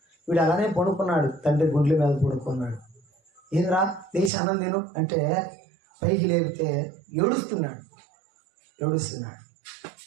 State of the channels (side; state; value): left; drops out; at 4.3 s